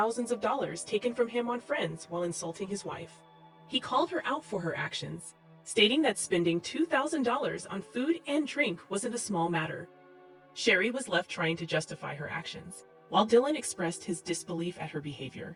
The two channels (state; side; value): identical; both; correlation 1.00